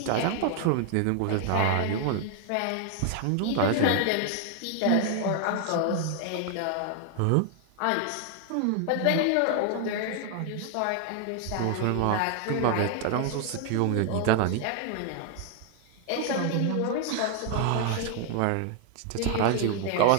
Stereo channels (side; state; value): both; different; correlation 0.00